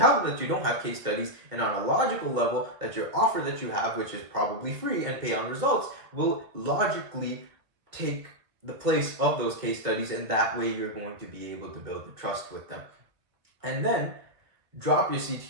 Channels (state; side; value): late; left; 2.2 ms